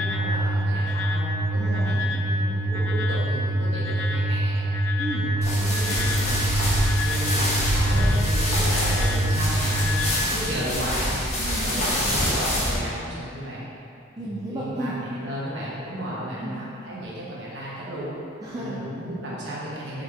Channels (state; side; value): normal; both; correlation 0.63